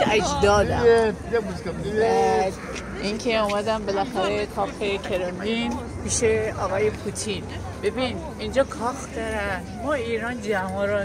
اجدادم. این که اومدم بالاخره کافه کرملین پیش آقای پوتین. ببین اینجا کاخ دارن، ما ایران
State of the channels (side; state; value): both; identical; correlation 1.00